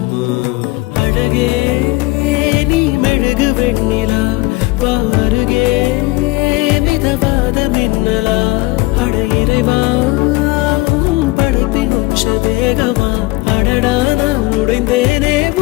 அழகே நீ மெழுகு வெண்ணிலா, பாருகே மிதவாத மின்னலா. அட இறைவா படைப்பின் உச்ச வேகமா, அடடா நான் உடைந்தேனே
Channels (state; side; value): quieter; right; 21.9 dB